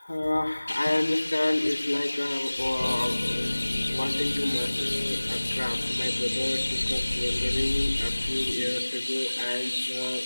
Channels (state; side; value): inverted; both; correlation -1.00